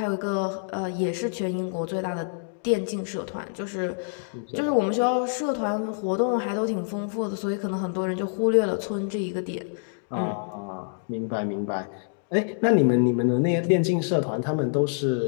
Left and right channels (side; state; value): right; silent; digital silence